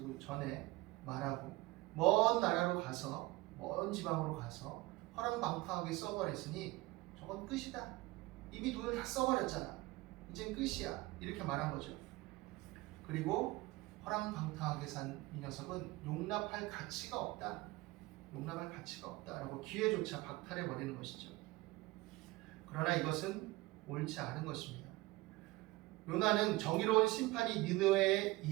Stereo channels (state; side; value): quieter; left; 20.6 dB